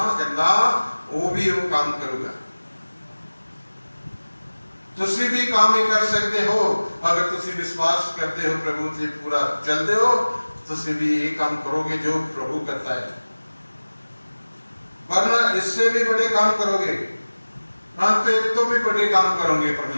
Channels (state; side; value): inverted; both; correlation -1.00